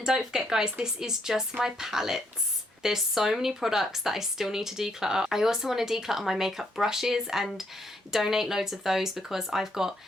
don't forget, guys, this is just my palettes. There's so many products that I still need to declutter. I also want to declutter my makeup brushes and donate loads of those because I've got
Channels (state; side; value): normal; both; correlation 0.73